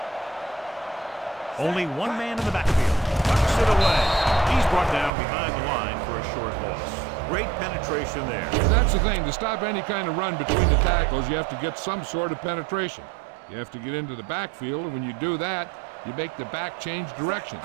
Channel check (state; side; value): drops out; left; at 5.1 s